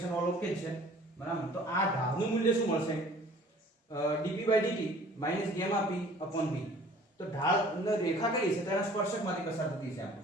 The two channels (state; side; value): normal; both; correlation 0.51